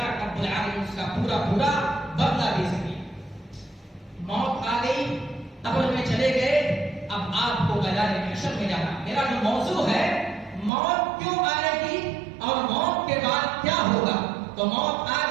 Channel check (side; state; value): left; drops out; at 10.7 s